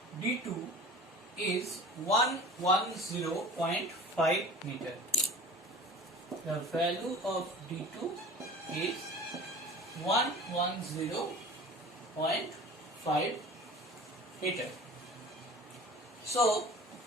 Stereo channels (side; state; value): both; normal; correlation 0.40